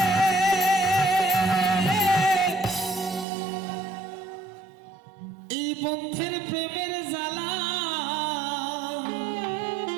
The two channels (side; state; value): left; drops out; at 3.2 s